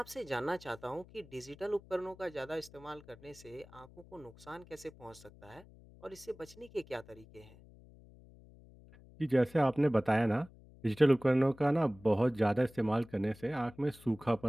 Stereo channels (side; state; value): left; noise; hum, 22 dB below the sound